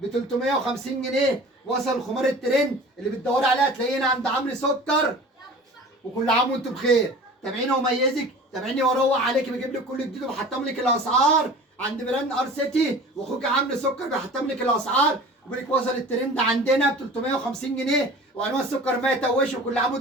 350 جنيه. وصل الخمار الترند اللي بتدوري عليها تلاقينا عند عمرو سكر. وكل عام وانتم بخير. تابعيني وميزك، تابعيني واروق عليك، بجيب لك كل جديد وبحطم لك الاسعار عند براند ار سيتي، واخوك عمرو سكر بيحطم لك الاسعار. وبيقول لك وصل الترند عندنا ب 350 جنيه، وانواع السكر ما يتوش. وكل عام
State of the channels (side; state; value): both; normal; correlation 0.41